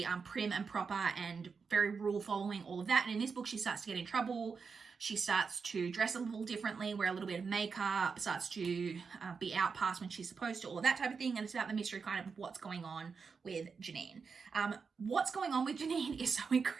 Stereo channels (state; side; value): quieter; left; 5.3 dB